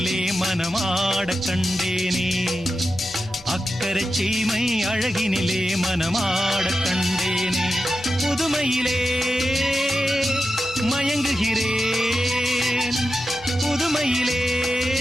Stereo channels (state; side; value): normal; both; correlation 0.91